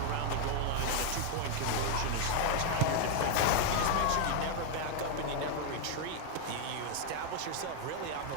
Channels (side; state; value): both; different; correlation 0.00